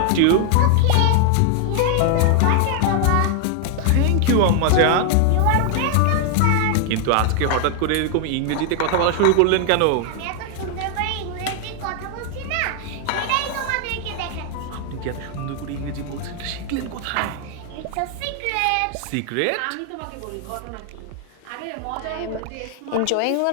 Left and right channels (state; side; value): different; both; correlation 0.00